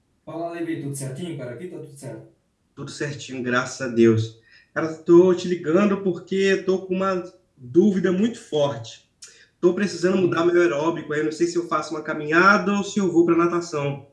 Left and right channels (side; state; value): both; identical; correlation 1.00